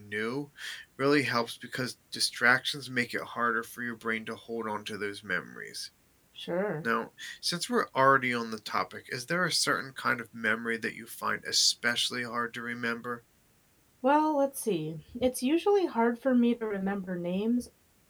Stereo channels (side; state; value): both; identical; correlation 1.00